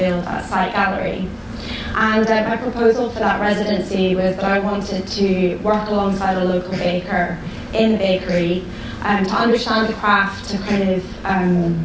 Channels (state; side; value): identical; both; correlation 1.00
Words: at Site Gallery. And my proposal for that residency was that I wanted to work alongside a local baker in the bakery to understand the craft, to kind of